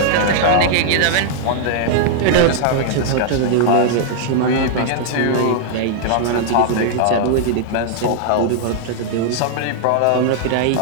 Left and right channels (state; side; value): different; both; correlation -0.01